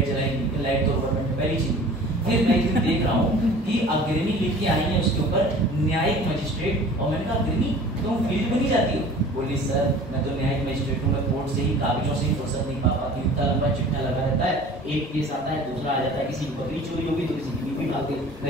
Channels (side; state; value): both; normal; correlation 0.45